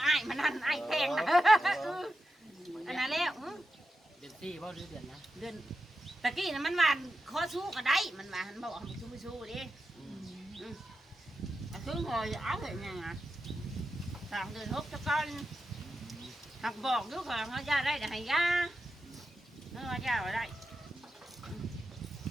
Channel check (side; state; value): both; normal; correlation 0.90